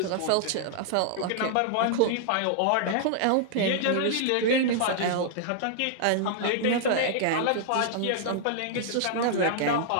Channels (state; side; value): different; both; correlation -0.01